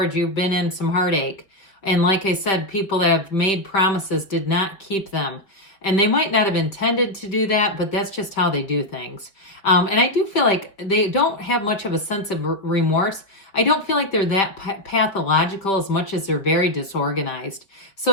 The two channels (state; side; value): late; right; 5.0 ms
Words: you've been in some heartache. And like I said, people that have made promises did not keep them. And they might not have intended to do that, but that's just how they do things. And I do feel like they don't have much of a sense of remorse. I don't feel like they're that pathological as much as they're very disorganized.